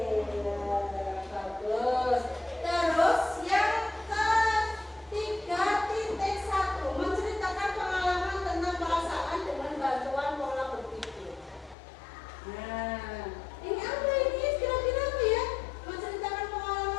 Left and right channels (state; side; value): drops out; right; at 11.8 s